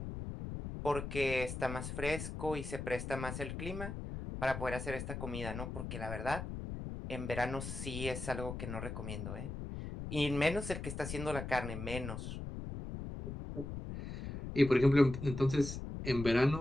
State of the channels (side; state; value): left; noise; rumble, 6 dB below the sound